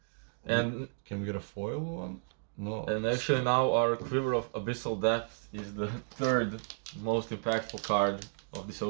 And can we get a foil one? No. And actually now our Quiver of Abyssal Depth is the 3rd most impactful card of this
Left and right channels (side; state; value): left; silent; digital silence